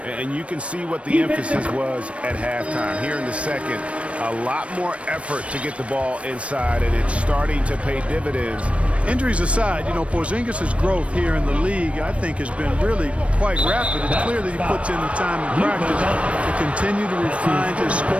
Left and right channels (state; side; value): late; left; 0.062 ms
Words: And you can see what the emphasis was at halftime. Here in the second, a lot more effort to get the ball inside, and it's starting to pay dividends. Injuries aside, you know, Porzingis' growth here in the league, I think, has been really quite rapid. It's clear that he puts in the time in practice to continue to refine his